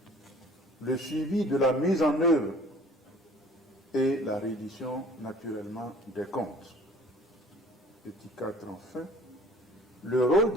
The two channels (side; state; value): both; normal; correlation 0.50